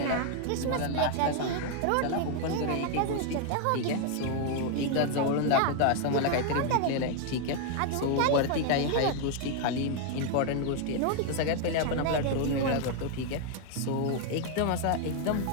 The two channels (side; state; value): both; different; correlation 0.00